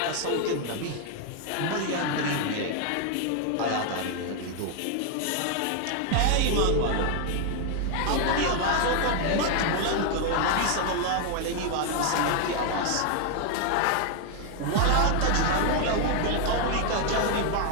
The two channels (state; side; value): different; both; correlation 0.00